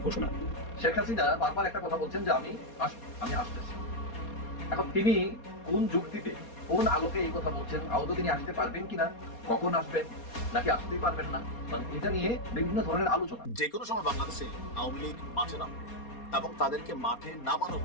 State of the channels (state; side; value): late; right; 4.2 ms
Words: ঘোষণা। শেখ হাসিনা বারবার একটা কথা বলছেন যে আমি আসতেছি। এখন তিনি কোন যুক্তিতে, কোন আলোকে এই কথা বলছেন? আদৌ তিনি আসতে পারবেন কিনা, কখন আসবেন, নাকি আসতেই পারবেন না, মানে এটা নিয়ে বিভিন্ন ধরনের আলোচনা। যে কোনো সময় বাংলাদেশে আওয়ামী লীগ মাঠে নামবে এবং তাদেরকে মাঠে নামানো